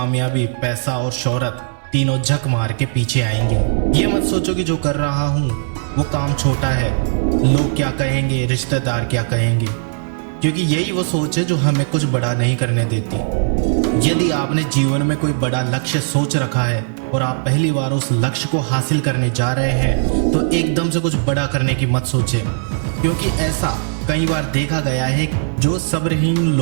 पैसा और शोहरत तीनों झक मार के पीछे आएंगे। ये मत सोचो कि जो कर रहा हूँ वो काम छोटा है, लोग क्या कहेंगे, रिश्तेदार क्या कहेंगे, क्योंकि यही वो सोच है जो हमें कुछ बड़ा नहीं करने देती। यदि आपने जीवन में कोई बड़ा लक्ष्य सोच रखा है और आप पहली बार उस लक्ष्य को हासिल करने जा रहे हैं तो एकदम से कुछ बड़ा करने की मत सोचें, क्योंकि ऐसा कई बार देखा गया है जो सब्रहीन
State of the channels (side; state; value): left; silent; 61 dB below the other